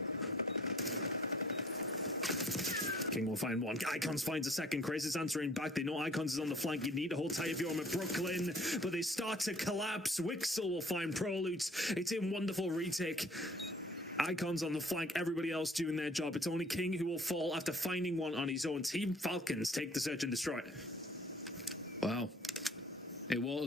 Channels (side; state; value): both; normal; correlation 0.56